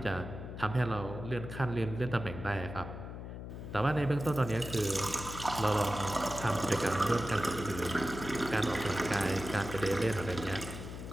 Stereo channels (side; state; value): left; noise; hum, 9 dB below the sound